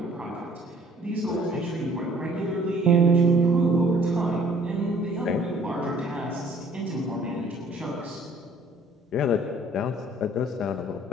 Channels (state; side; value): normal; both; correlation 0.56